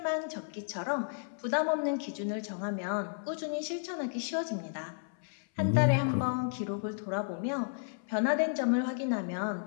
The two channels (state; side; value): silent; right; 56 dB below the other